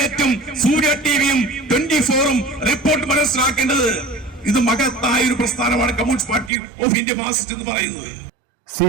സൂര്യ ടിവിയും 24-ഉം റിപ്പോർട്ട് മനസ്സിലാക്കേണ്ടത് ഇത് മഹത്തായ ഒരു പ്രസ്ഥാനമാണ് communist party of India Marxist എന്ന് പറയുന്നത്.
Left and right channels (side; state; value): left; drops out; at 6.5 s